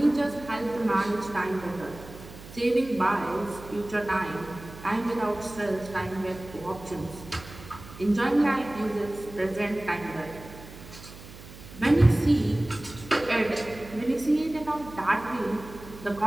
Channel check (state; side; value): noise; right; hum, 17 dB below the sound